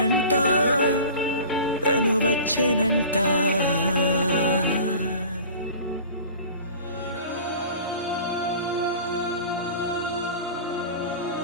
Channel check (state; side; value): inverted; both; correlation -0.40